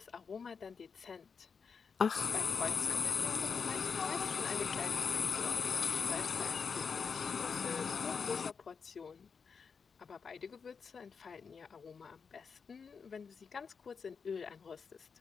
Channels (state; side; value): quieter; right; 5.7 dB